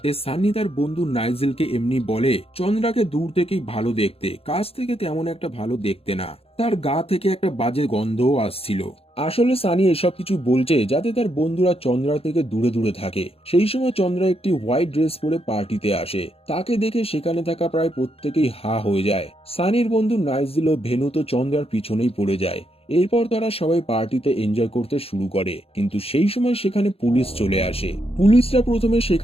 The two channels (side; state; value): right; late; 0.28 ms